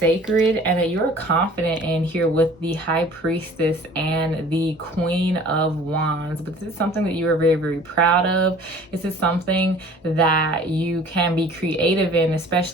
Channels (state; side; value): normal; both; correlation 0.48